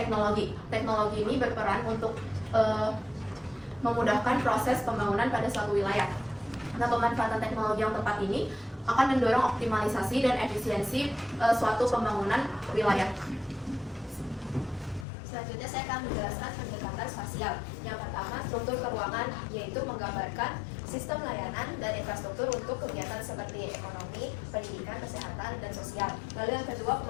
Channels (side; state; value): right; drops out; at 15.1 s